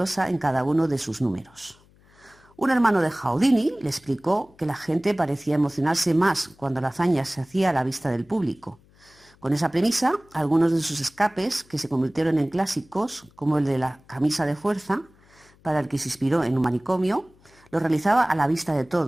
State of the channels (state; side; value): noise; left; hum, 30 dB below the sound